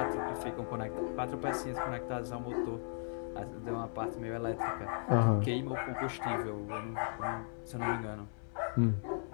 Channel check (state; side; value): silent; right; 53 dB below the other